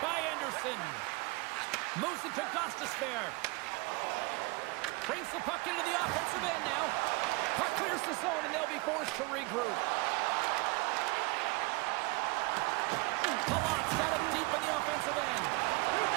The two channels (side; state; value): left; quieter; 26.0 dB